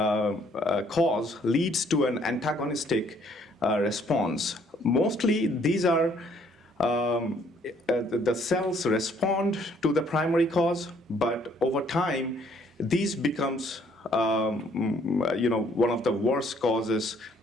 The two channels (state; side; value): normal; both; correlation 0.64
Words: leads to an antagonistic response. Mostly these are the cells respond to the primary cause, but over time, these becomes one of the worst causes